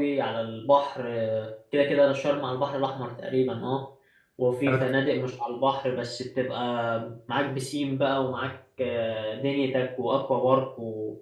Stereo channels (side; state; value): both; identical; correlation 1.00